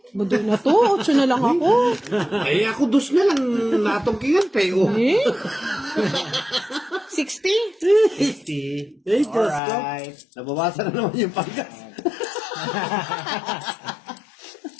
Budoy na to. 8 na lang ako. Ay, ako 2 na lang natungkingan, pero. Eh? 60? 60. Ay, Diyos ko. Alright. Nabawasan na naman yung panggas.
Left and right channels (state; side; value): drops out; right; at 9.6 s